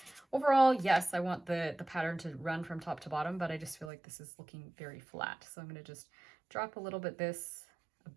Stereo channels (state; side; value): drops out; left; at 3.9 s